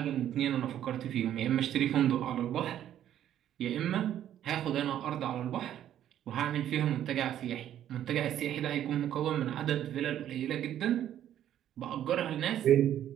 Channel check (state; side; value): quieter; left; 11.1 dB